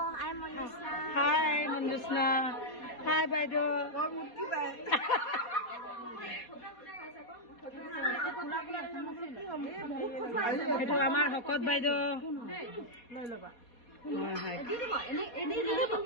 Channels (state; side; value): late; right; 4.2 ms